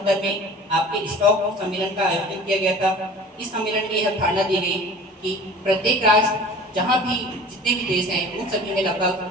में आपके स्टॉक सम्मेलन का आयोजन किया गया था। इस सम्मेलन में यह धारणा दी गई कि प्रत्येक राष्ट्र जहाँ भी जितने भी देश हैं उन सभी में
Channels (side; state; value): both; normal; correlation 0.43